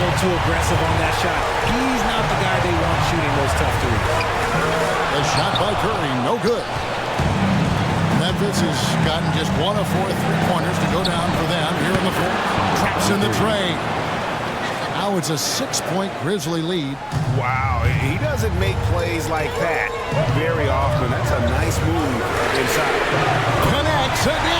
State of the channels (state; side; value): identical; both; correlation 1.00